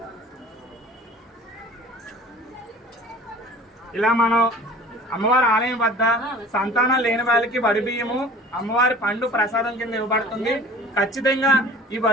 ఇలా మనం అమ్మవారి ఆలయం వద్ద సంతానం లేని వాళ్ళకి వడి బియ్యము అమ్మవారి పండు ప్రసాదం కింద ఇవ్వబడుతుంది. ఖచ్చితంగా ఈ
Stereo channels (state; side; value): normal; both; correlation 0.44